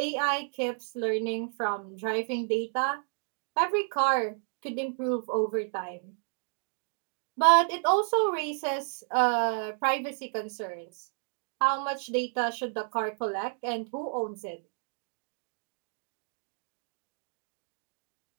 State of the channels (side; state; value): left; silent; 57 dB below the other